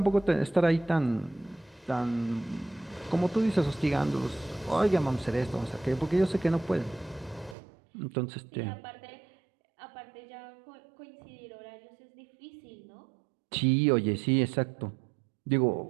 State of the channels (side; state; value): left; drops out; at 7.6 s